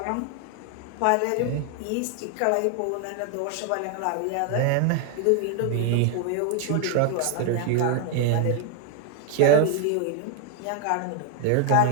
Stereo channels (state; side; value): different; both; correlation 0.00